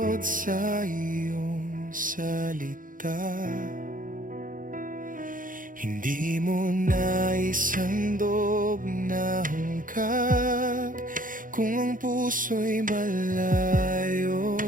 sa iyong salita. Hindi mo naisandog na hungkag kung ang puso'y malayo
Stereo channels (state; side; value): late; left; 0.39 ms